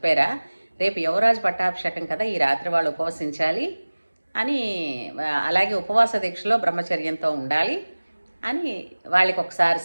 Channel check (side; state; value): both; inverted; correlation -1.00